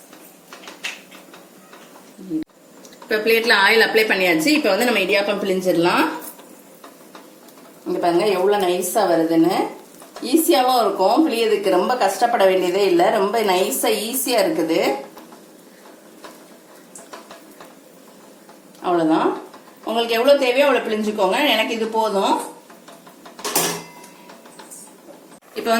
இப்ப பிளேட்ல ஆயில் அப்ளை பண்ணியாச்சு. இப்ப நம்ம இடியாப்பம் பிழிஞ்சிடலாம். இங்க பாருங்க எவ்வளவு நைஸா வருதுன்னு. ஈஸியாவும் இருக்கும், பிழியதுக்கு ரொம்ப கஷ்டப்பட வேண்டியதே இல்ல. ரொம்ப நைஸா ஈஸியா இருக்குது. அவ்வளவுதான். உங்களுக்கு எவ்வளவு தேவையோ அவ்வளவு பிழிஞ்சுக்கோங்க. எனக்கு இது போதும். இப்ப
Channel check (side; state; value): both; identical; correlation 1.00